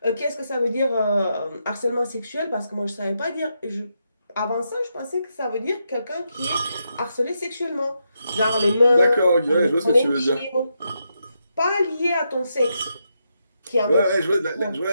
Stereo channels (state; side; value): inverted; both; correlation -0.83